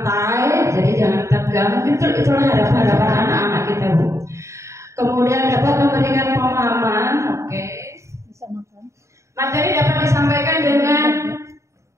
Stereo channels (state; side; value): late; left; 0.14 ms